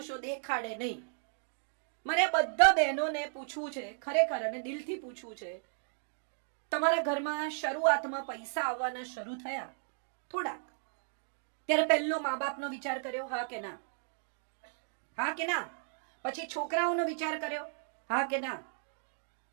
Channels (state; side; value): silent; left; digital silence